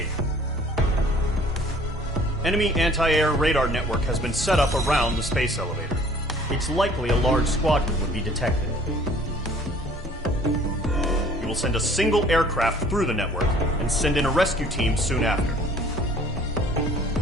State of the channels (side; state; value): both; normal; correlation 0.53